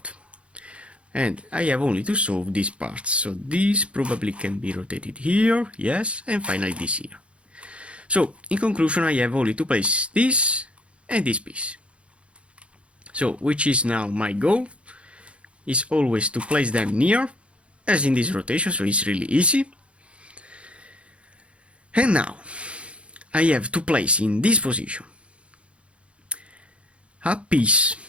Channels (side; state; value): left; late; 0.060 ms